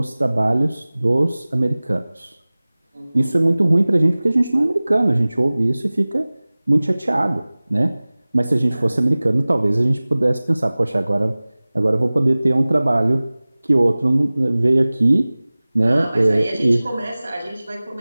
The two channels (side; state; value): both; inverted; correlation -0.99